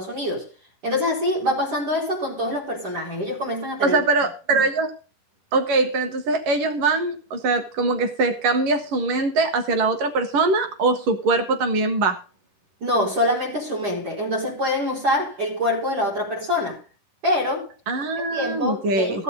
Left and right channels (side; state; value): left; late; 11 ms